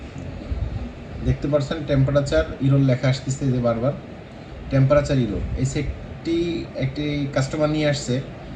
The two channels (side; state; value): both; identical; correlation 1.00